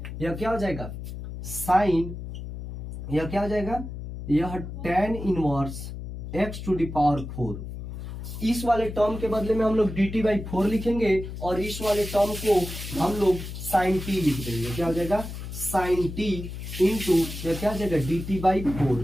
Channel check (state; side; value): noise; left; hum, 8 dB below the sound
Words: यह क्या हो जाएगा साइन यह क्या हो जाएगा यह tan inverse x to the power 4। इस वाले टर्म के बदले में हम लोग dt/4 लिखेंगे और इस वाले टर्म को हम लोग sin t लिख देंगे। क्या हो जाएगा साइन टी इंटू क्या हो जाएगा